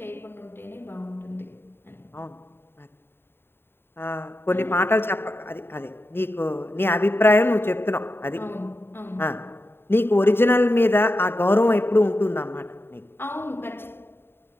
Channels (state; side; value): late; right; 0.11 ms